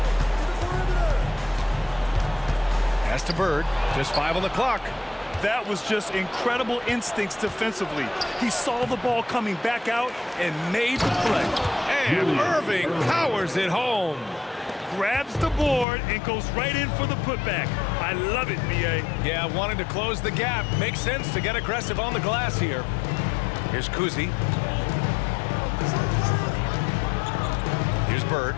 Pass to Bird. Just 5 on the clock. That was just incredible instincts defensively. He saw the ball coming back out and made the play. And Irving powers it home. Grabs the board and goes right in for the putback. I love it, B.A. Yeah, wanting to close the gap. Makes sense to get aggressive on the glass here. Here's Kuzi. Here's Bird.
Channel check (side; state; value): right; drops out; at 15.9 s